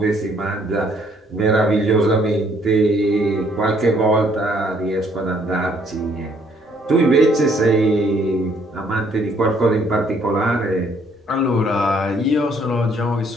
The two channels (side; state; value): both; normal; correlation 0.65